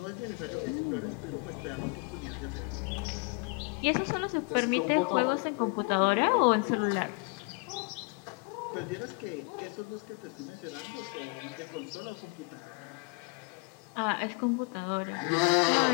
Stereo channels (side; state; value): right; quieter; 32.4 dB